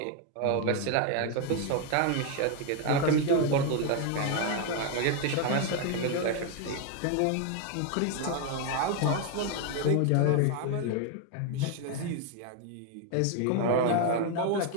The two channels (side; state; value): both; different; correlation 0.01